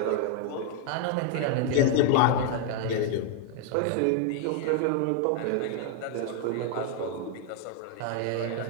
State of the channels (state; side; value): different; both; correlation 0.00